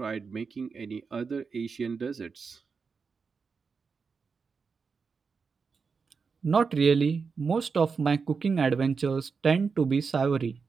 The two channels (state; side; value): quieter; left; 5.2 dB